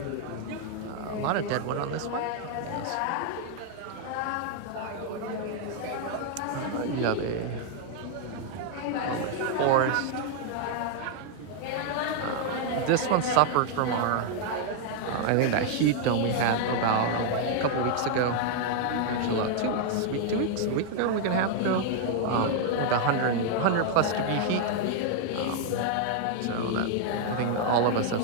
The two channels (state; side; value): different; both; correlation 0.00